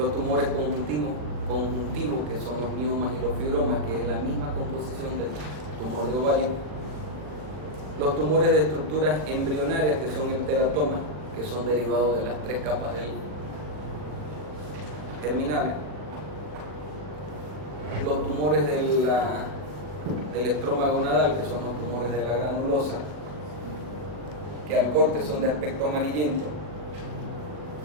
tumores conjuntivos, que son los miomas y los fibromas, que es la misma composición del tumor de ovario. Los tumores de estructuras embrionarias, que son el teratoma, que son derivados de las 3 capas germinales. Los tumores del estroma gonadal, que son los tumores de la granulosa, que al corte son de aspecto amarillento,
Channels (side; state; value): left; late; 40 ms